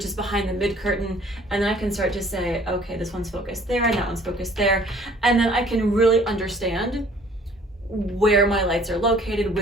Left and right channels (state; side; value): normal; both; correlation 0.55